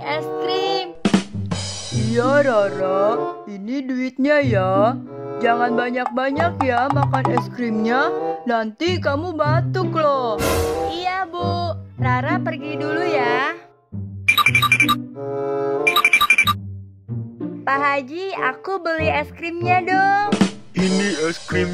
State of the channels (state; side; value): identical; both; correlation 1.00